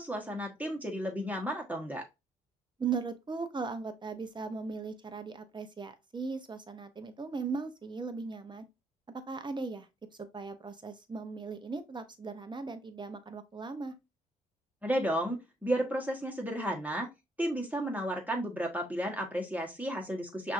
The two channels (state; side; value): normal; both; correlation 0.72